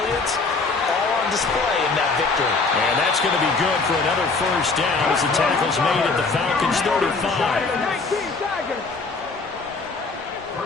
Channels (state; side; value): quieter; right; 4.1 dB